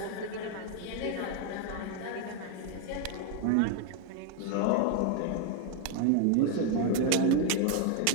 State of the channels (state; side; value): different; both; correlation 0.01